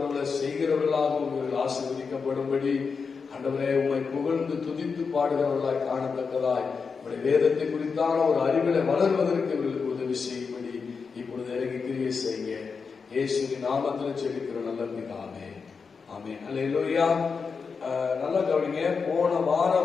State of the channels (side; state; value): right; quieter; 5.3 dB